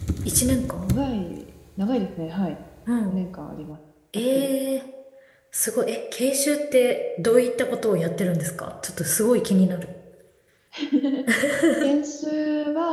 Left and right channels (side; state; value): both; identical; correlation 1.00